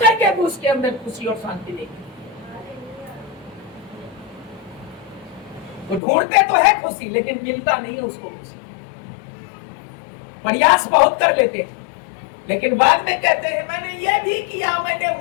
भी उसके अंदर खुशी और शांति नहीं। वो ढूंढते तो है खुशी, लेकिन मिलता नहीं है उसको खुशी। प्रयास बहुत कर लेते हैं, लेकिन बाद में कहते हैं मैंने ये भी किया, मैंने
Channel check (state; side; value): drops out; right; at 6.0 s